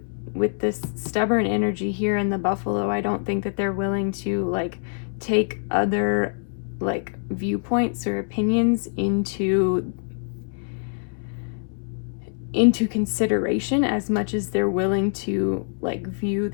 this stubborn energy here in the buffalo. I don't think that they're willing to like take other like viewpoints or opinions into into consideration as much as they're willing to like view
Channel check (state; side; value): silent; right; 62 dB below the other